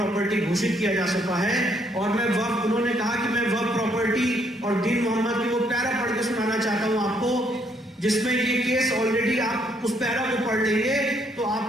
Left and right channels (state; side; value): normal; both; correlation 0.70